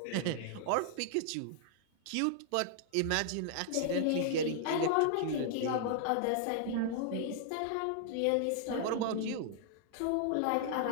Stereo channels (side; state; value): both; different; correlation -0.01